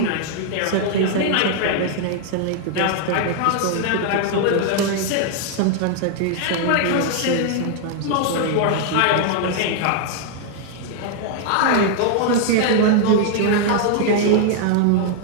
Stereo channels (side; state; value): both; different; correlation 0.00